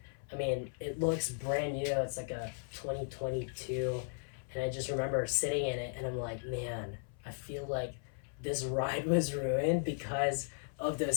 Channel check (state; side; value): silent; right; 54 dB below the other